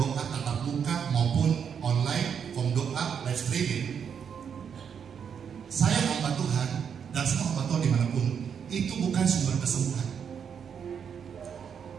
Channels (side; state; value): left; quieter; 7.4 dB